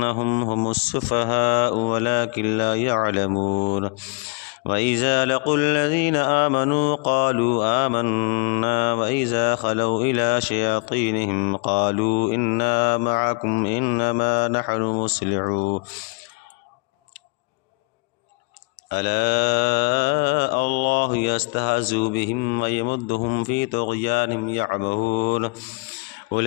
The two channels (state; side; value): quieter; right; 31.1 dB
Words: هم السفهاء ولكن لا يعلمون وإذا لقوا الذين آمنوا قالوا آمنا وإذا خلوا إلى شياطينهم قالوا إنا معكم إنما نحن مصلحون ألا الله يستهزئ بهم ويمدهم في طغيانهم يعمهون